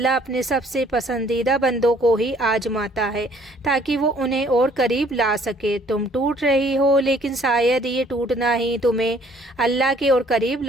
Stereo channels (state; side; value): normal; both; correlation 0.59